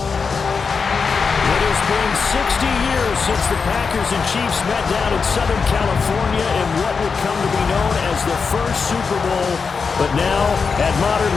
It has been 60 years since the Packers and Chiefs met down in Southern California in what would come to be known as the first Super Bowl. But now, at modern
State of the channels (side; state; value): right; quieter; 5.3 dB